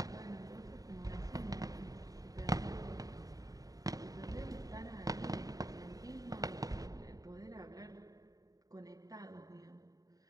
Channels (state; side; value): late; left; 0.18 ms